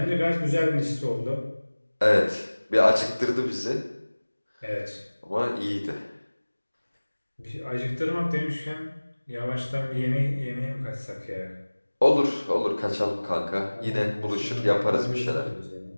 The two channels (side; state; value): both; inverted; correlation -1.00